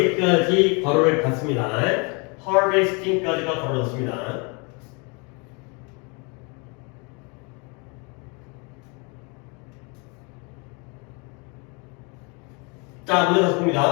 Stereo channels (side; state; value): right; quieter; 32.3 dB